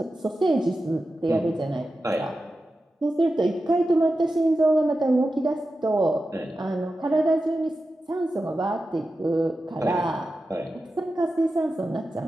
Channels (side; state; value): both; normal; correlation 0.92